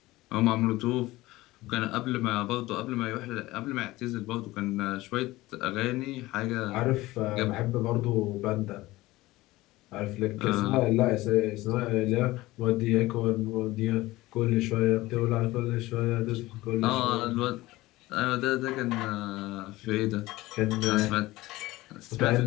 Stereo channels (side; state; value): right; quieter; 18.6 dB